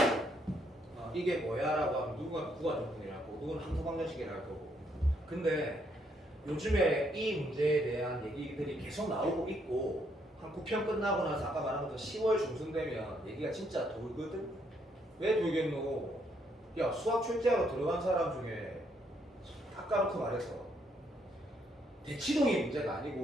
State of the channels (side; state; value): both; normal; correlation 0.72